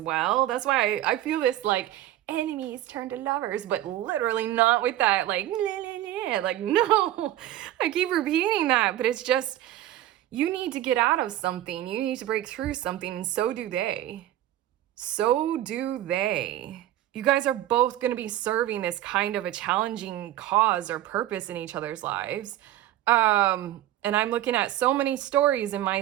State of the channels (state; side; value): quieter; left; 13.6 dB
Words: That's why I feel this like enemies turn to lovers, but literally not with that like like no. I keep repeating that, but it's just, you need to get out of something, you need to break through something, and so do they. So do they. You guys are both going to be serving this kind of a challenging cause or purpose in each other's lives. And I'm looking at so many stories in my